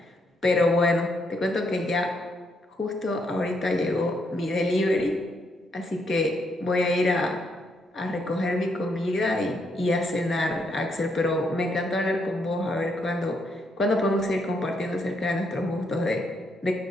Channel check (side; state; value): both; normal; correlation 0.76